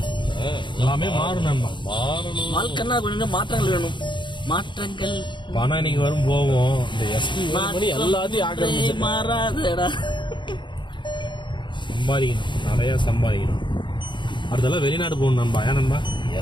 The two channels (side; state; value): right; late; 0.23 ms